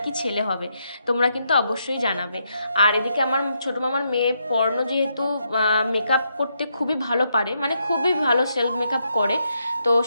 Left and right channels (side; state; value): both; inverted; correlation -0.79